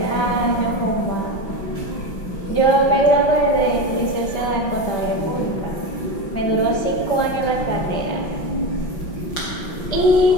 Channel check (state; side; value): late; right; 5.6 ms